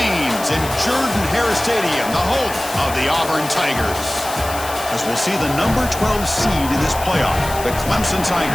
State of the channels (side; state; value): left; noise; hiss, 11 dB below the sound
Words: in Jordan-Hare Stadium, the home of the Auburn Tigers. As we'll see the number 12 seed in this playoff, the Clemson